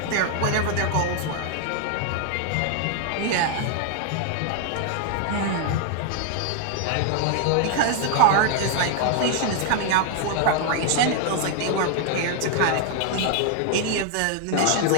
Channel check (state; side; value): different; both; correlation 0.00